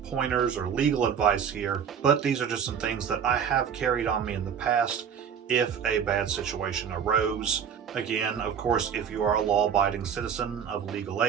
pointers or legal advice here, but these are just some things that I have carried on me in the past if a bad situation arose. Again, of course, if you are a law-abiding citizen of legal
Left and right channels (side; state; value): left; quieter; 7.7 dB